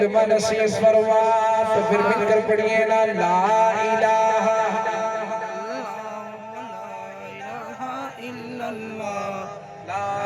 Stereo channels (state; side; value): identical; both; correlation 1.00